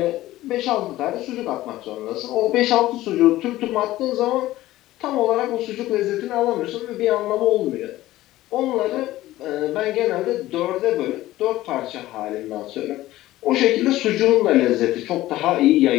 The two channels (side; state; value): right; quieter; 16.0 dB